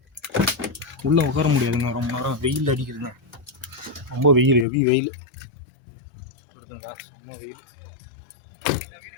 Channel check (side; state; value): right; drops out; at 4.7 s